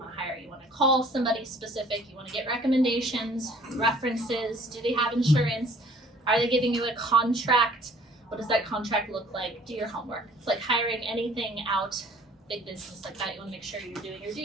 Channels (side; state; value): both; normal; correlation 0.54